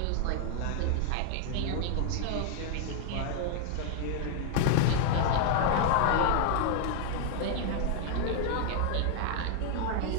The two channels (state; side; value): different; both; correlation 0.00